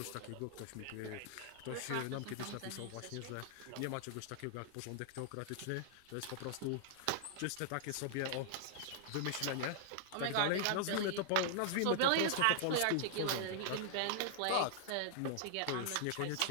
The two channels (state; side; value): different; both; correlation -0.01